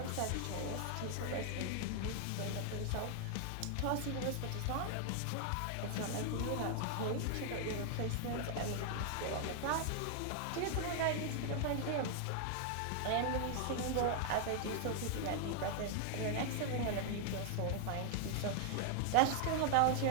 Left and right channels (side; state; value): both; different; correlation 0.00